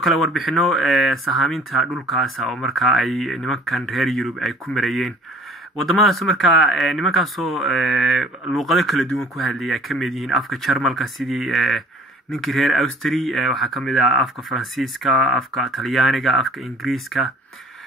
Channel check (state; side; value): normal; both; correlation 0.51